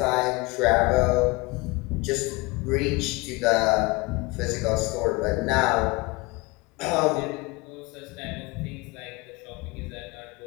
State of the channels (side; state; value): right; quieter; 24.7 dB